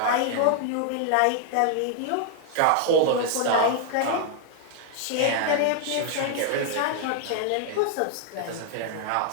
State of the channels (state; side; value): different; both; correlation 0.00